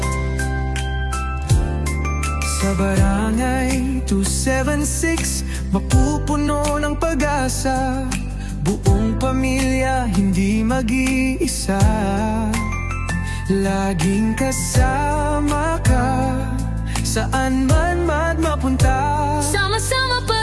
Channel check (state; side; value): identical; both; correlation 1.00